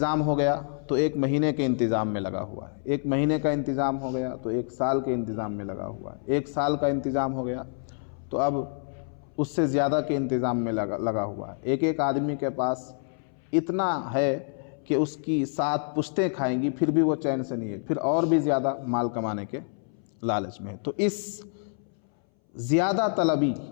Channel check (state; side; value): silent; right; 60 dB below the other